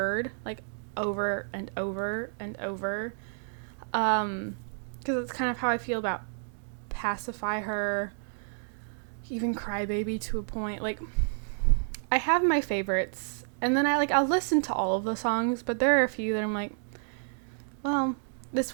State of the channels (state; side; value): silent; left; digital silence